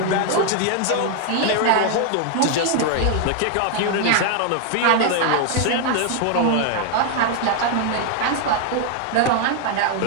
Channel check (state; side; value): different; both; correlation 0.00